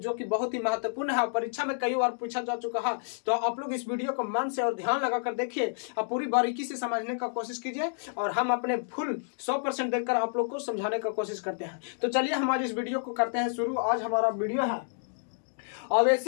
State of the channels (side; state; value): right; silent; digital silence